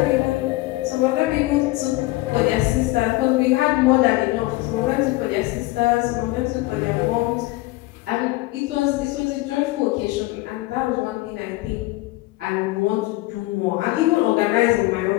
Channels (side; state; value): right; quieter; 19.8 dB